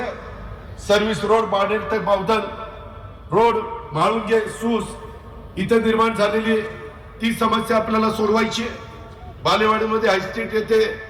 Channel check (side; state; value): both; identical; correlation 1.00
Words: सर्व्हिस रोड बाणेर ते बावधन रोड, म्हाळुंगे, सूस इथं निर्माण झालेली ती समस्या आपल्याला सोडवायची. बालेवाडीमध्ये हायस्ट्रीट येथे